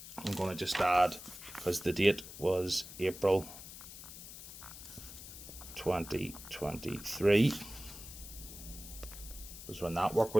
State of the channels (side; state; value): left; noise; hiss, 13 dB below the sound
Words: I'm going to just add, because the date was April 2023. Was when that work